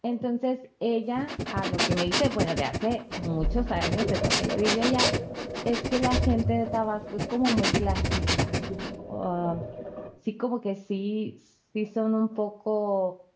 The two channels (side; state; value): both; identical; correlation 1.00